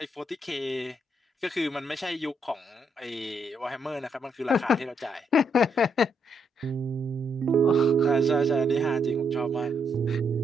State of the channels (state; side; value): normal; both; correlation 0.76